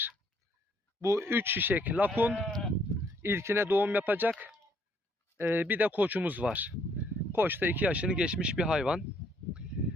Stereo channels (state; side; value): normal; both; correlation 0.67